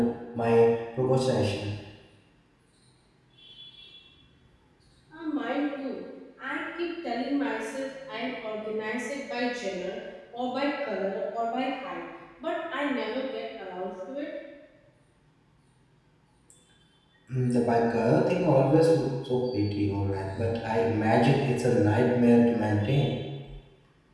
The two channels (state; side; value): identical; both; correlation 1.00